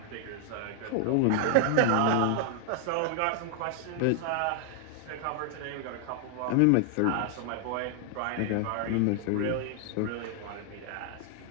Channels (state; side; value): different; both; correlation 0.00